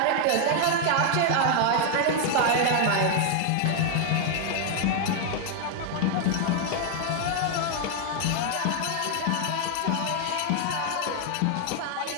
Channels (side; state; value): both; different; correlation 0.00